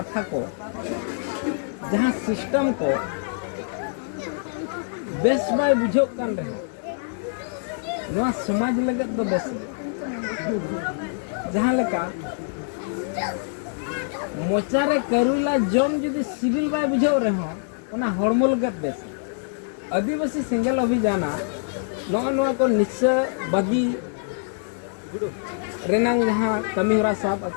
को जहाँ सिस्टम को बेस बाय बुझो कान रहे नवा समाज लगत दो बेस जहाँ लेका मोचारे करुला जम जुदी सिविल बाय बुझो रहे ओना हड़मो लगत बेस आदिवासी सिंगल अभियान नवा को निश्चय बागी रेनांग जहाँ कमी होरा साब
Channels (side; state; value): right; silent; digital silence